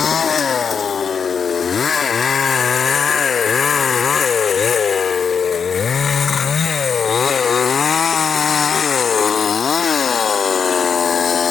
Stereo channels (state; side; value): quieter; right; 6.4 dB